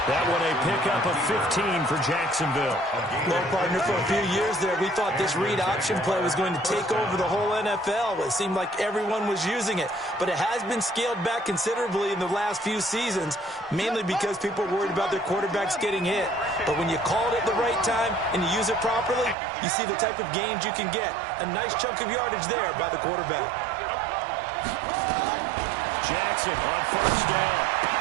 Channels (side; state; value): left; drops out; at 19.4 s